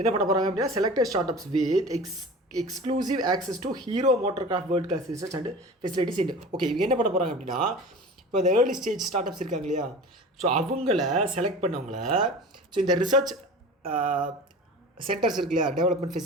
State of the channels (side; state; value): both; normal; correlation 0.36